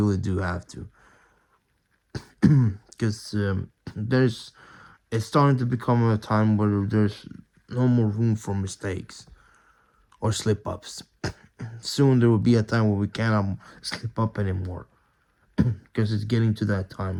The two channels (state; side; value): identical; both; correlation 1.00